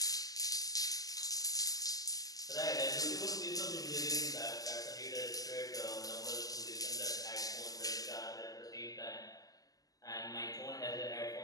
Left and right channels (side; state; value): right; late; 0.17 ms